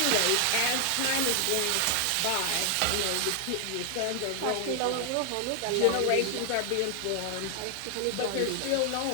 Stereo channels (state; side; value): different; both; correlation 0.00